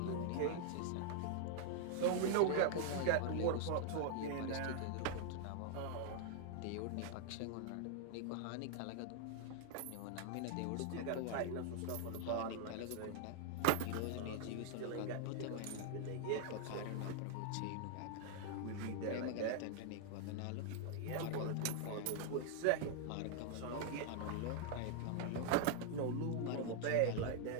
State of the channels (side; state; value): both; different; correlation -0.01